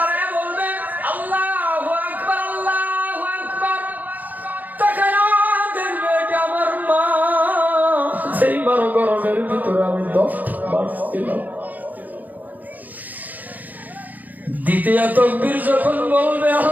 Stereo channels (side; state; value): left; late; 0.082 ms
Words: বলবে আল্লাহু আকবার, আল্লাহু আকবার, তাকায় দেখবে এটা আমার মা, সেই মার গর্ভের ভিতরে আমি 10 মাস ছিলাম। দ্বিতীয় তাকবীর যখন বলবে